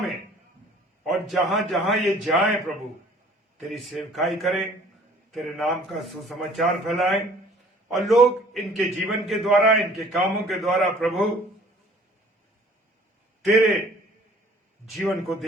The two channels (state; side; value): normal; both; correlation 0.53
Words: और जहां जहां ये जाएं प्रभु, तेरी सेवकाई करें, तेरे नाम का सुसमाचार फैलाएं और लोग इनके जीवन के द्वारा, इनके कामों के द्वारा प्रभु तेरे जीवन को